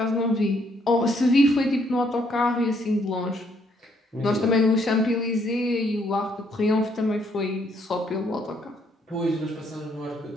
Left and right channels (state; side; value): normal; both; correlation 0.70